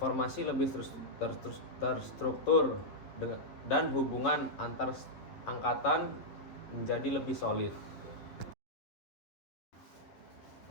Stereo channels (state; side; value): late; right; 11 ms